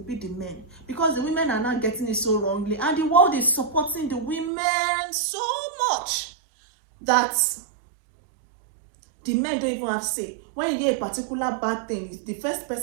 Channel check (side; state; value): left; drops out; at 4.5 s